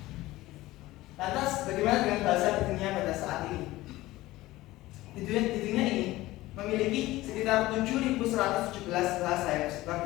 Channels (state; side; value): quieter; right; 17.7 dB